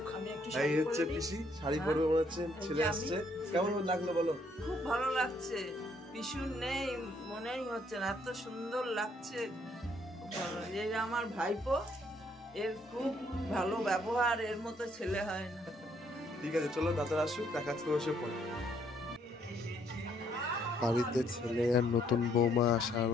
এই হচ্ছে পিসি, শাড়ি পরবে মনে হচ্ছে, ছেলে আসছে। কেমন লাগলো বলো? খুব ভালো লাগছে। পিসু নেই মনেই হচ্ছে না, এত সুন্দর লাগছে। এই আমার ভাইপো, এর খুব ভালো ব্যবহার, এর মতো ছেলে হয় না। ঠিক আছে, চলো দাদারা আসুক, দেখা হচ্ছে বসে পরে। বাড়িতে ছেলে আর নতুন বৌমা আসা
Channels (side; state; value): both; normal; correlation 0.68